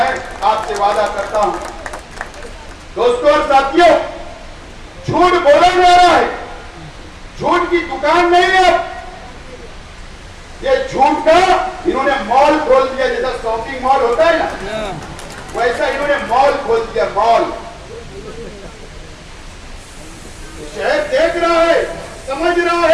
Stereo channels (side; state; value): both; identical; correlation 1.00